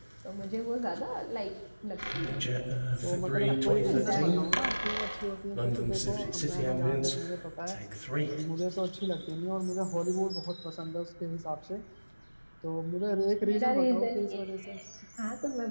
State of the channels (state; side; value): inverted; both; correlation -1.00